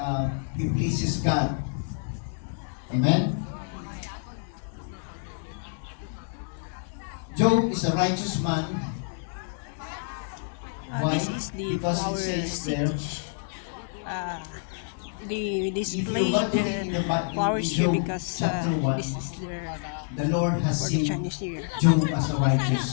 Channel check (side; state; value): right; silent; digital silence